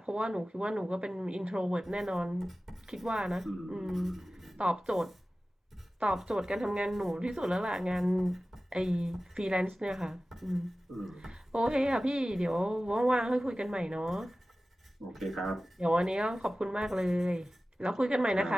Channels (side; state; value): both; normal; correlation 0.96